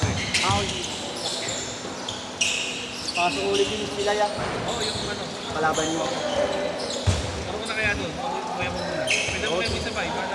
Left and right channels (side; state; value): both; identical; correlation 1.00